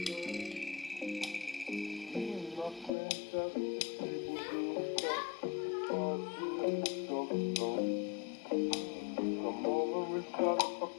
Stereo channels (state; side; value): drops out; right; at 2.9 s